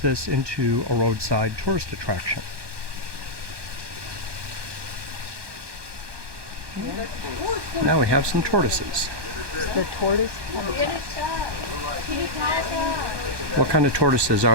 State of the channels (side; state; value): left; late; 1.2 ms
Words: this into a roadside tourist attraction. Now we have some tortoises. The tortoise? What kind of tortoises